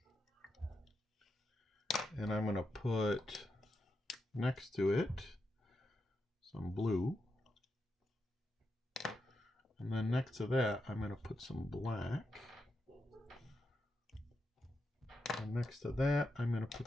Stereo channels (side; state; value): both; normal; correlation 0.85